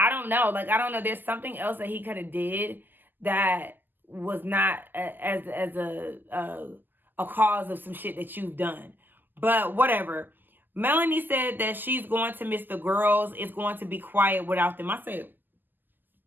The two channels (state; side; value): late; left; 0.089 ms